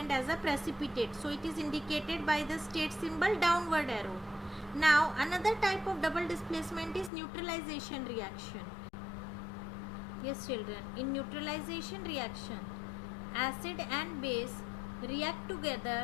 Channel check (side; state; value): right; drops out; at 7.1 s